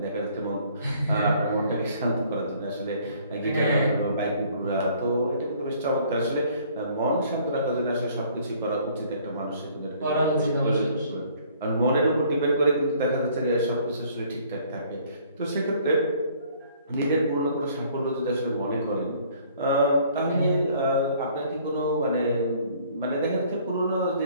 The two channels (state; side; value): inverted; both; correlation -0.58